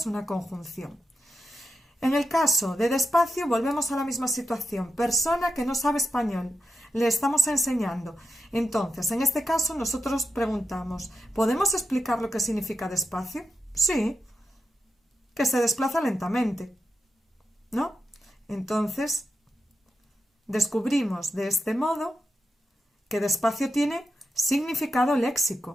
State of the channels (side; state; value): both; normal; correlation 0.87